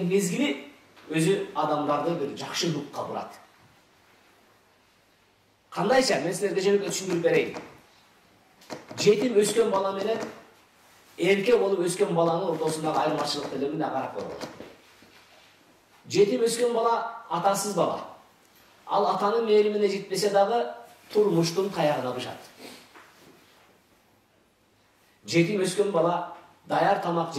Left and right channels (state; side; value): identical; both; correlation 1.00